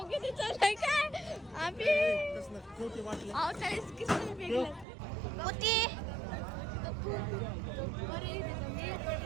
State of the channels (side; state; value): left; drops out; at 4.9 s